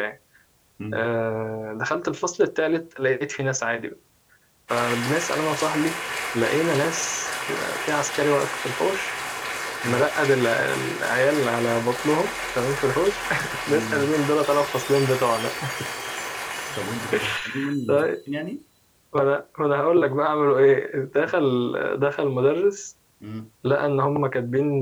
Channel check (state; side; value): identical; both; correlation 1.00